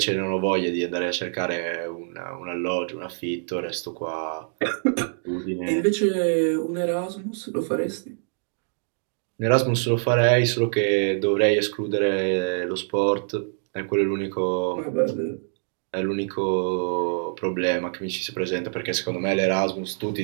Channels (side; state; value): left; silent; digital silence